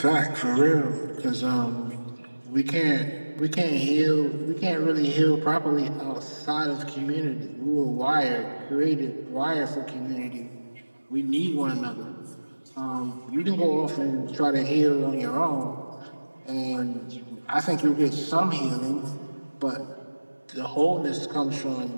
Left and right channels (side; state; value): both; inverted; correlation -1.00